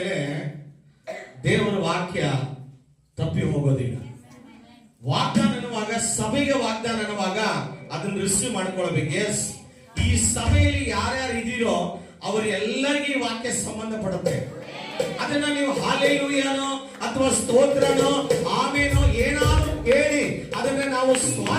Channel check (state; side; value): identical; both; correlation 1.00